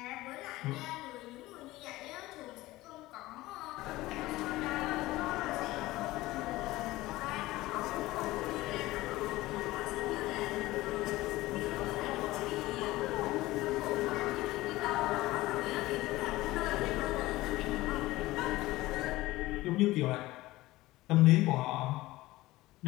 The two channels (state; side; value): quieter; right; 18.2 dB